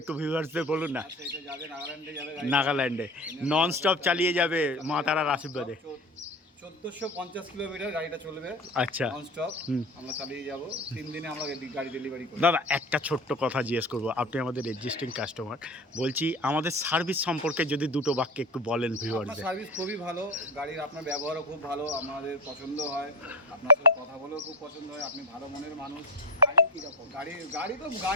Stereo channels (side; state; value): both; normal; correlation 0.26